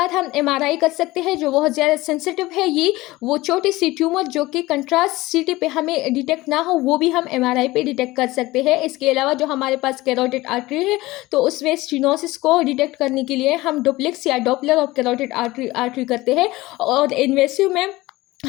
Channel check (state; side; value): quieter; right; 19.2 dB